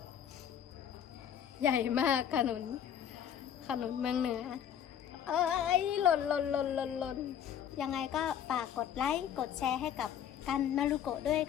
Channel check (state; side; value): quieter; right; 9.3 dB